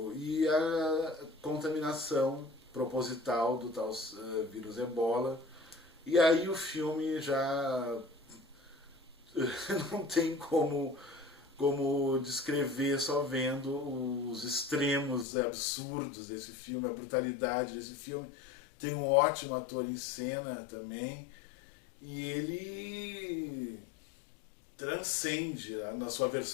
e a contaminação proposital do tal vírus ebola. E aí o filme já não tem como descrever só vendo os extremos absurdos desse filme, a brutalidade desse filme. Tem um ótimo ator em cena também, e ele transcende, na sua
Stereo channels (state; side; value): drops out; right; at 15.2 s